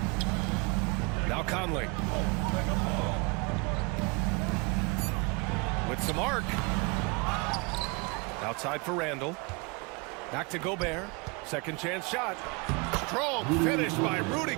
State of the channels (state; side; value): quieter; left; 29.6 dB